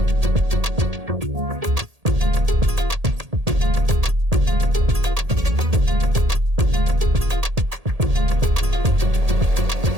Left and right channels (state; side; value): late; left; 1.8 ms